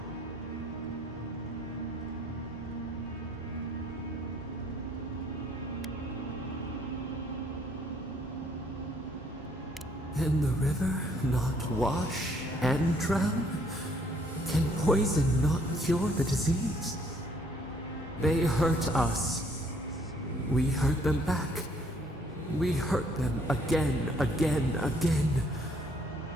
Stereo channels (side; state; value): both; normal; correlation 0.64